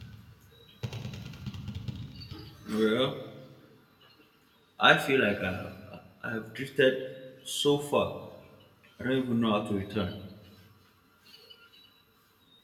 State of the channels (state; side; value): identical; both; correlation 1.00